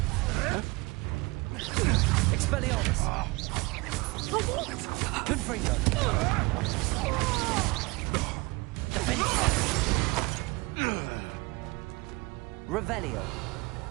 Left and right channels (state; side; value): quieter; left; 24.9 dB